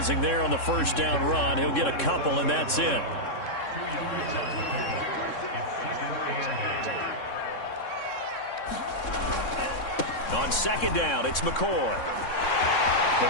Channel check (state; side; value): late; right; 3.6 ms